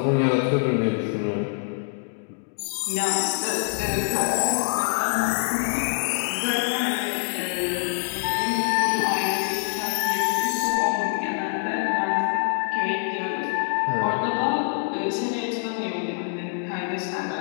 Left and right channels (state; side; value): silent; right; digital silence